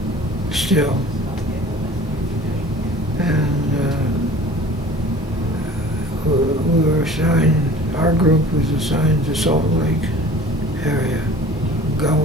still, and we were assigned. Our group was assigned to Salt Lake area,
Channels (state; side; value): normal; both; correlation 0.45